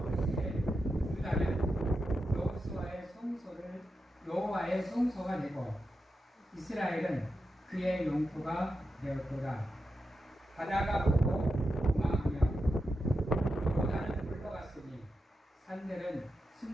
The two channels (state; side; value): normal; both; correlation 0.89